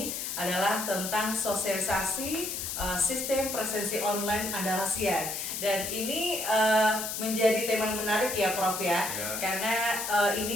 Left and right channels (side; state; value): left; noise; hiss, 4 dB below the sound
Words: adalah tentang sosialisasi sistem presensi online Andalasian. Dan ini menjadi tema yang menarik ya Prof ya. Karena